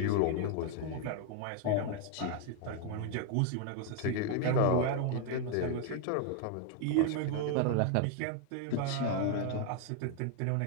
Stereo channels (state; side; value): different; both; correlation 0.00